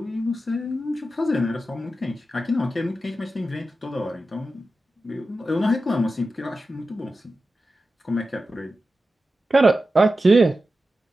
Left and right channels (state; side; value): normal; both; correlation 0.92